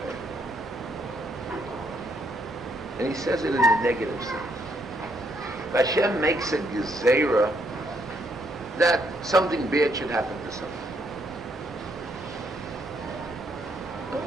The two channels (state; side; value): normal; both; correlation 0.72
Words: And he says it in the negative sense. Hashem makes a gezerah that something bad should happen to someone.